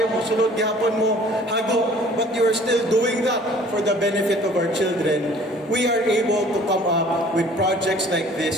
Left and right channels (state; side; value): normal; both; correlation 0.52